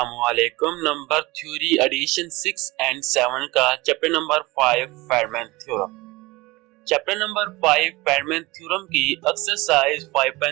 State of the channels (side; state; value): left; quieter; 21.8 dB